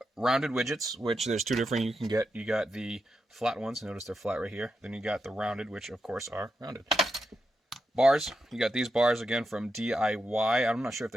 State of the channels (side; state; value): both; normal; correlation 0.86